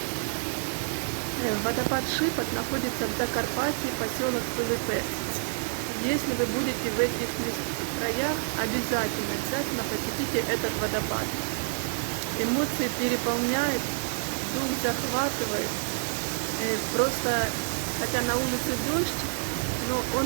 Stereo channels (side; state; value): left; silent; 59 dB below the other